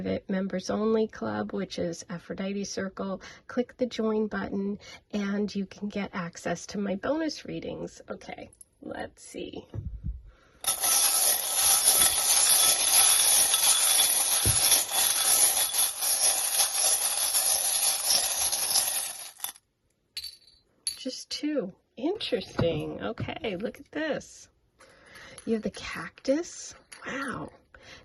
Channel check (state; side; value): identical; both; correlation 1.00